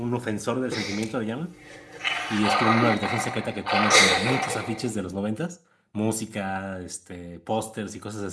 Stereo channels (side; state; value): both; identical; correlation 1.00